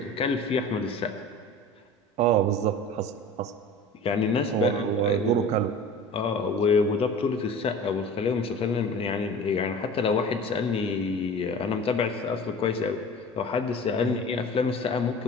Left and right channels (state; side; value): normal; both; correlation 0.39